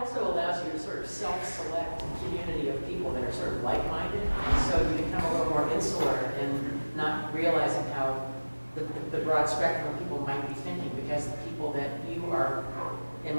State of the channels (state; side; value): inverted; both; correlation -1.00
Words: allows you to sort of self-select a community of people that are sort of like-minded. So you become a little more insular and not realizing how the broad spectrum of people might be thinking, because the people that you are, in